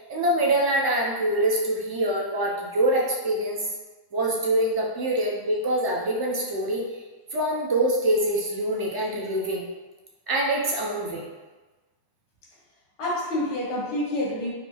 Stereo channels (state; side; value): late; right; 1.0 ms